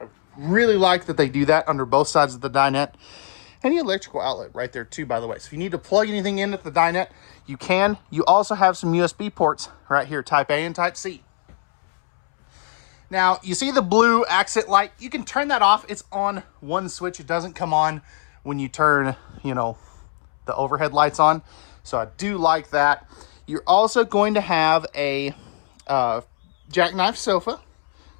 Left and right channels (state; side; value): silent; right; 65 dB below the other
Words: really like that they do that under both sides of the dinette. And the electrical outlet right there too, by the way. So if you need to plug anything in at the dinette, you can. You also have some USB ports right here, Type A and Type C. Now, you see the blue accent light? You can turn that off. It's on one switch. It doesn't come on when you turn, you know, the overhead lights on. So I do like that. You're also going to have a jackknife sofa.